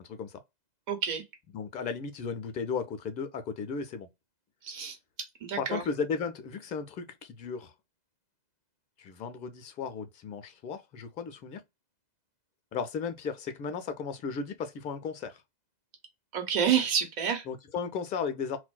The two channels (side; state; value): left; late; 2.0 ms